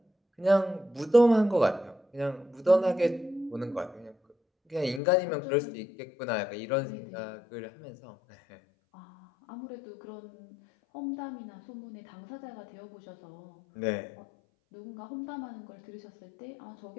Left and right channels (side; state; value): right; drops out; at 5.0 s